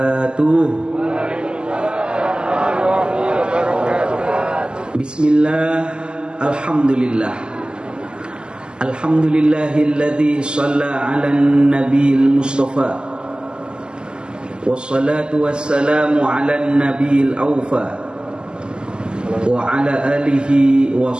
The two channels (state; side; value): late; left; 0.048 ms